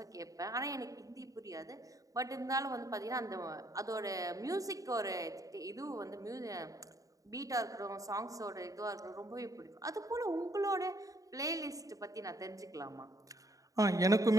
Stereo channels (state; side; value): late; left; 0.16 ms